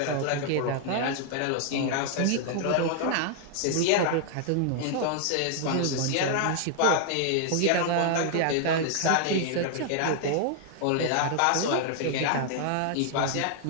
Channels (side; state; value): both; different; correlation 0.00